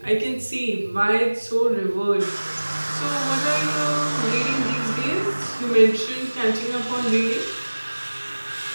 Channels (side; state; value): both; inverted; correlation -1.00